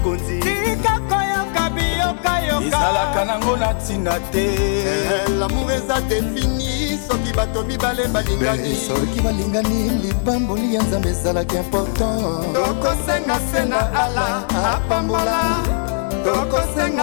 Tika koyoka babi yoka yoka ezalaka nango na ntina te. L'amour eza défini soki bato mibale balingani. Soki balingani libamboli ya nzambe ezalaki important. Tokosenga se na ala apambola,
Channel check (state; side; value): silent; right; digital silence